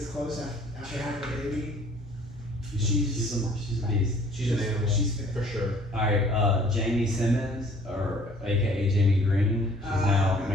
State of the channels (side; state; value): both; normal; correlation 0.55